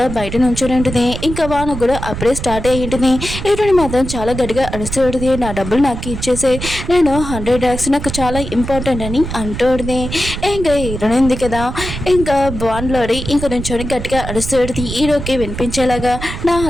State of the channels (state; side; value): noise; right; rumble, 7 dB below the sound